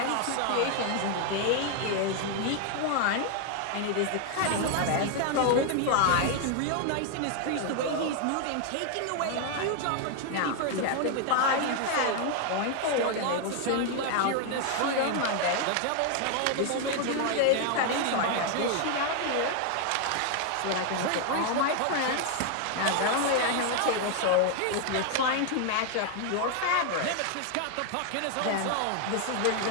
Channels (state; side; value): different; both; correlation 0.00